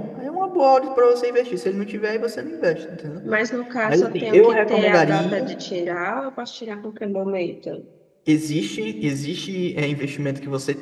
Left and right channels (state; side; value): identical; both; correlation 1.00